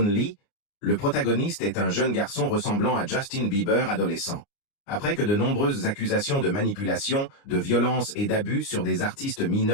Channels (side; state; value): right; late; 29 ms